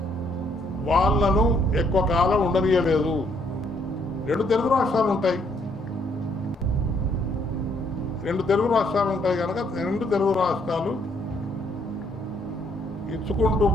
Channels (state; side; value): normal; both; correlation 0.69